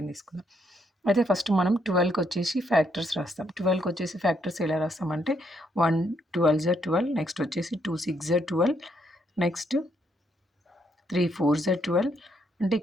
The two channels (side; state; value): both; normal; correlation 0.74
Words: తీసుకుందాం. అయితే ఫస్ట్ మనం 12కి వచ్చేసి ఫ్యాక్టర్స్ రాస్తాం. 12కి వచ్చేసి ఫ్యాక్టర్స్ ఎలా రాస్తామంటే 1 12 జా 12, నెక్స్ట్ వచ్చేసి 2 6 జా 12, నెక్స్ట్ 3 4 జా 12. అంటే